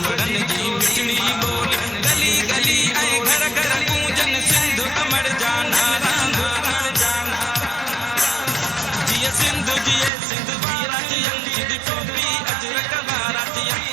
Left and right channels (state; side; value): drops out; left; at 10.1 s